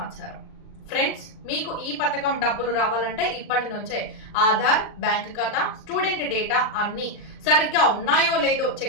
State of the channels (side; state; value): right; late; 39 ms